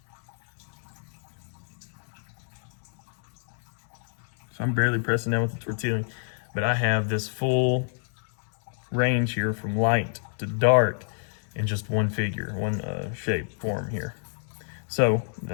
So I'm barely pressing down with the tortilla, but I have this full range here from light to dark in just one figure, one shape form here. So,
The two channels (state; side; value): silent; right; digital silence